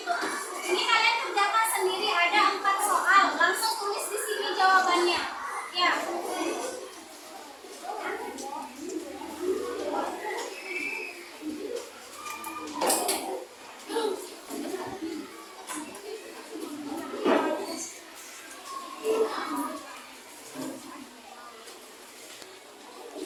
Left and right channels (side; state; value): both; identical; correlation 1.00